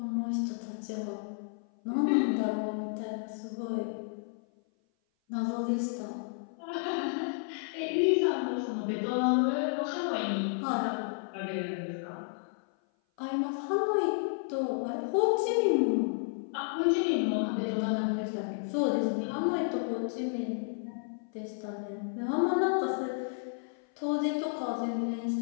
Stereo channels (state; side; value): silent; right; 55 dB below the other